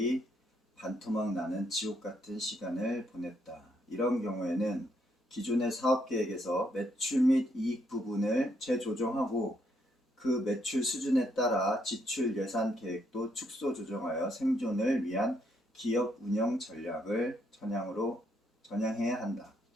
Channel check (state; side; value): normal; both; correlation 0.74